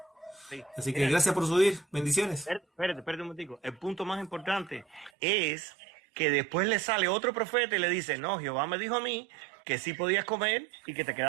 Sí. Así que gracias por subir, bendiciones. Espérate un momentico. El punto más importante es que después le sale otro profeta y le dice, no, Jehová me dijo a mí que sí podías comer y que te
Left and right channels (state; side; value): drops out; left; at 5.1 s